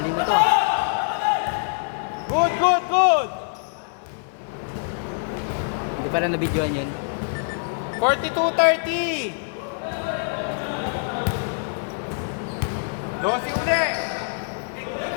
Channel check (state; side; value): silent; right; 57 dB below the other